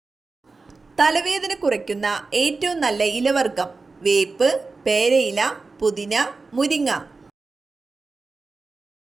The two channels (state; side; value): quieter; left; 3.9 dB